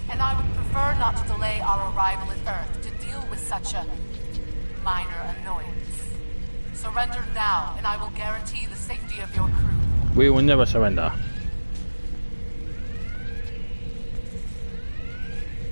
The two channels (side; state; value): both; inverted; correlation -1.00